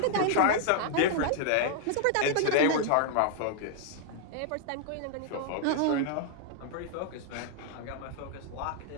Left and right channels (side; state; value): both; different; correlation 0.00